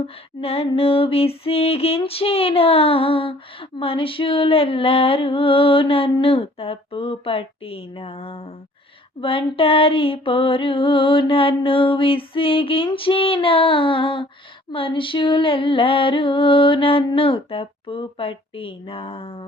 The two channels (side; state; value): both; normal; correlation 0.55